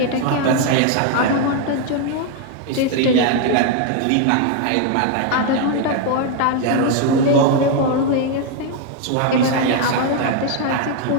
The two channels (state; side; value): different; both; correlation 0.01